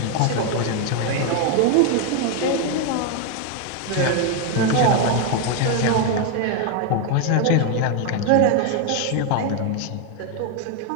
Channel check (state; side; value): different; both; correlation 0.01